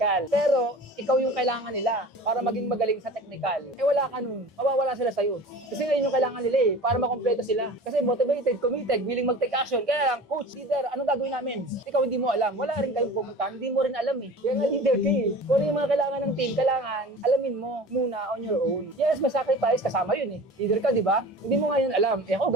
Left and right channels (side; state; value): both; normal; correlation 0.39